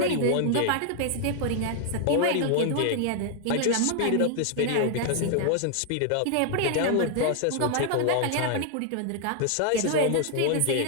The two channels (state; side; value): different; both; correlation 0.00